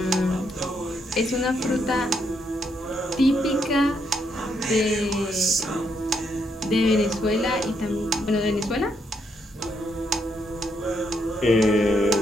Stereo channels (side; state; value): both; normal; correlation 0.77